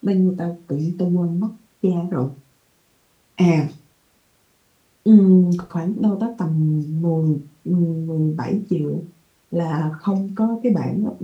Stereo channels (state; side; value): identical; both; correlation 1.00